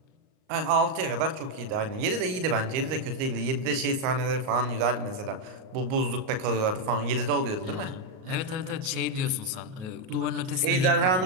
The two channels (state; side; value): late; left; 38 ms